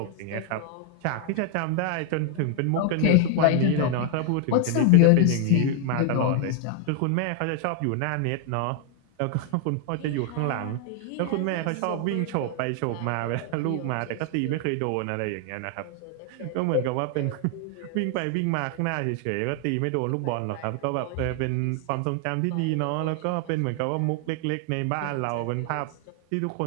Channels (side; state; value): both; different; correlation 0.00